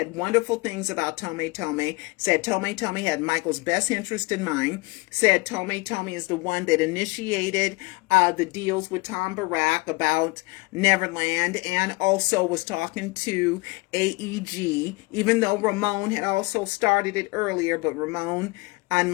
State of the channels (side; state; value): right; quieter; 25.5 dB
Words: wonderful things about Tommy, said Tommy had Michael's best interest in mind, said Tommy is the one that initiated the deals with Tom Barack about Neverland, and also was talking to AEG, even though Ramon had also started it earlier, but Ramon and